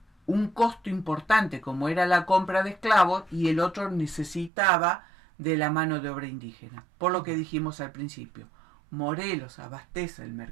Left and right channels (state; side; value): drops out; left; at 4.5 s